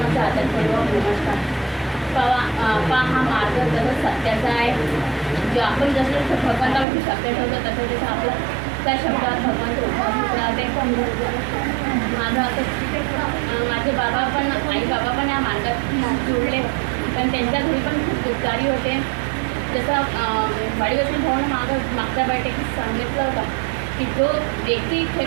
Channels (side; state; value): left; drops out; at 6.9 s